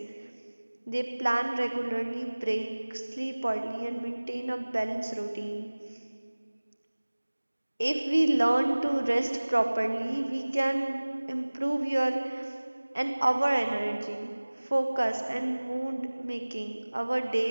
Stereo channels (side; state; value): both; inverted; correlation -1.00